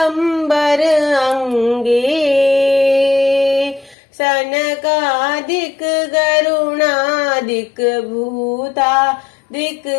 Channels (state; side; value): drops out; right; at 4.0 s